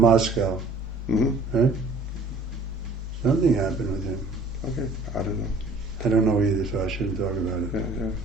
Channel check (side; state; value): left; quieter; 3.0 dB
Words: right? Something happened with him. Okay, I don't know. I don't know either, so I shouldn't talk about it. Yeah.